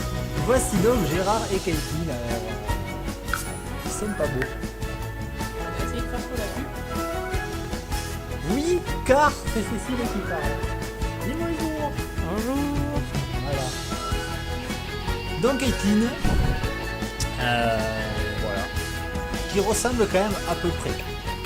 Voici donc Gérard et Caitlin. Alors, ils sont pas beaux. On va essayer de faire pour la pub. Oui, car c'est Cécile qui parle. Dis bonjour. Bonjour. Voilà. Donc Caitlin, voilà, qui ressemble quand même à peu près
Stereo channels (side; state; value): both; identical; correlation 1.00